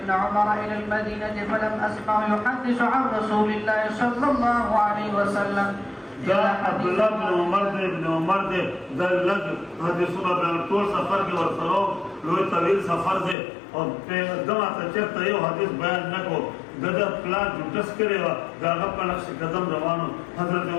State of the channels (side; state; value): right; drops out; at 13.4 s